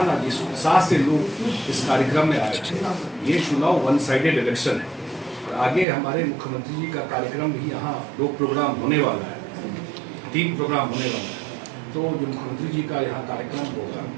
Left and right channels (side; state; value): left; drops out; at 5.9 s